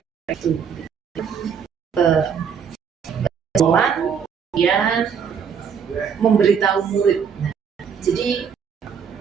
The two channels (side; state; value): left; quieter; 7.0 dB